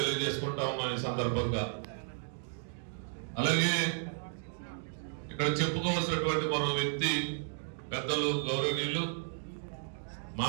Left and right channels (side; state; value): left; silent; digital silence